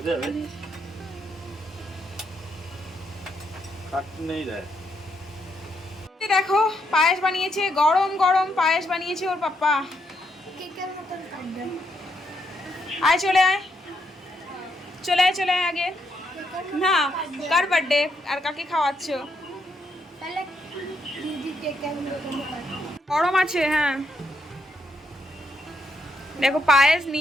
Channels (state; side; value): normal; both; correlation 0.78